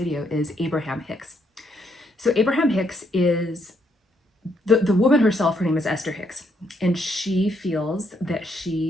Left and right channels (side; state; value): both; normal; correlation 0.74